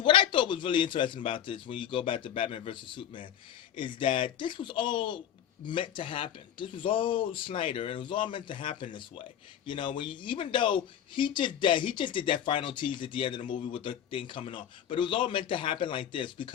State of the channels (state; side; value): quieter; right; 9.9 dB